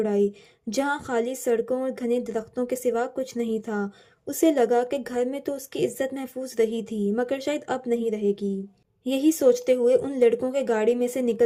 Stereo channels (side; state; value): both; identical; correlation 1.00